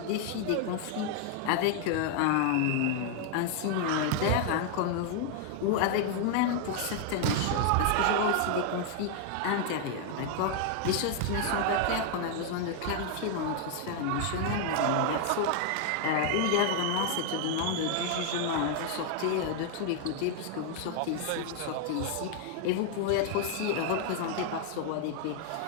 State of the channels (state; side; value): different; both; correlation 0.00